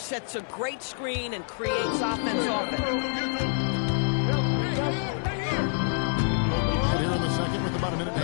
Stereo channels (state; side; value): silent; right; 60 dB below the other